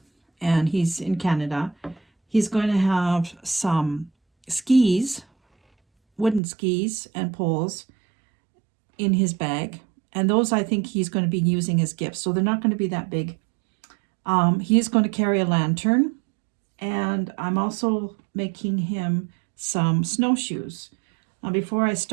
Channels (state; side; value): drops out; left; at 6.4 s